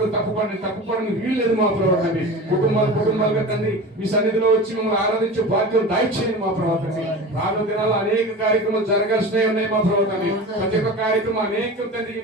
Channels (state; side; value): normal; both; correlation 0.32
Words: తప్పుపడని వీలు లేదు మా ప్రభావ. తండ్రి కుటుంబాలుగా తండ్రి మీ సన్నిధిలో వచ్చి మమ్మల్ని ఆరాధించే భాగ్యం దయచేయండి మా ప్రభావ. తండ్రి రానున్న దినాల్లో అనేక కార్యక్రమాలు జరగాల్సినవి ఉన్నాయి మా ప్రభావ. తండ్రి ప్రతి ఒక్క కార్యక్రమం అనేక తండ్రి